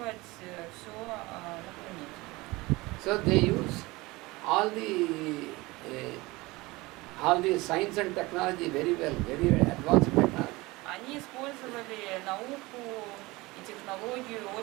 все на планете. So they use all the science and technology very well, very advanced technology. Они использовали науку и технологию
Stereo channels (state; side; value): quieter; left; 21.9 dB